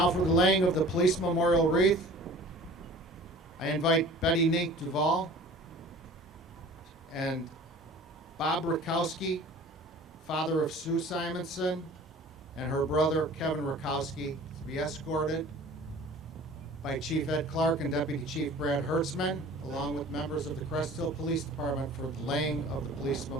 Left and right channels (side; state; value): both; normal; correlation 0.45